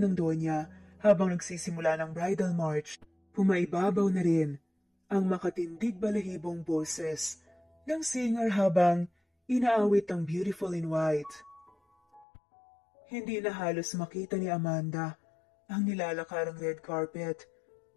Doña habang nagsisimula ng bridal march. Pumaibabaw na rin ang makatindig balahibong boses ng singer habang inaawit ang Beautiful in White. Hindi na halos makita ni Amanda ang nilalakarang red carpet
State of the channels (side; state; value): right; drops out; at 12.2 s